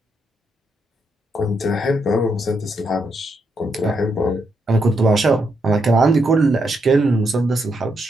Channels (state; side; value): normal; both; correlation 0.80